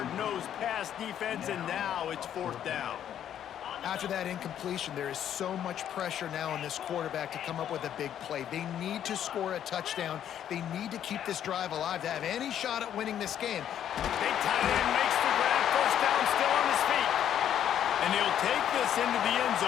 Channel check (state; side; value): quieter; right; 10.1 dB